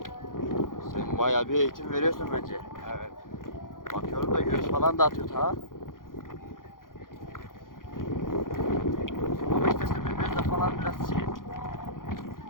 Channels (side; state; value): right; late; 0.90 ms